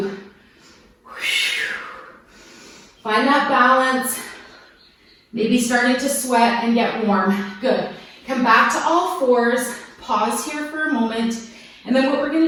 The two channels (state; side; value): identical; both; correlation 1.00